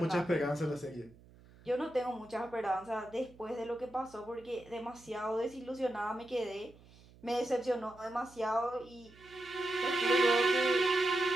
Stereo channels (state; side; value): noise; right; hum, 24 dB below the sound